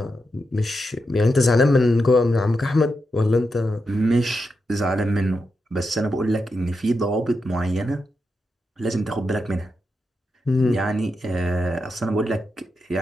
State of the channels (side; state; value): both; normal; correlation 0.86